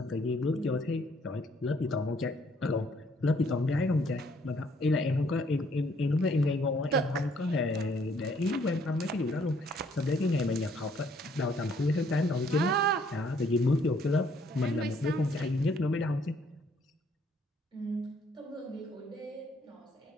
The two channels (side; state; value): both; normal; correlation 0.65